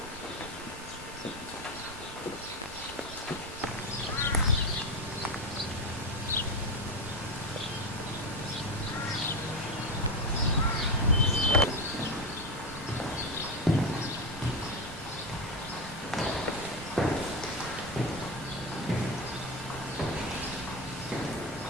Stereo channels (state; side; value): normal; both; correlation 0.15